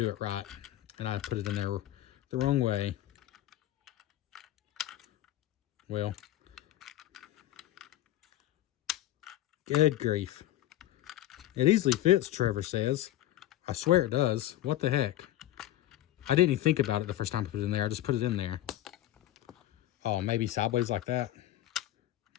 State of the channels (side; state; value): right; quieter; 14.0 dB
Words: it right. And I put it in there the wrong way. Well, good grief. It easily fits, Trevor says. I swear it does. What the heck? I didn't even think about it the first time I put it in there. I just put it in there. Oh, maybe sideways like that.